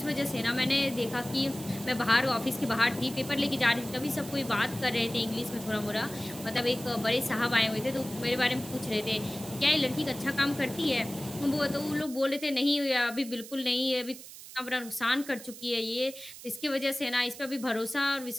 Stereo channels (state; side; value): noise; right; hiss, 15 dB below the sound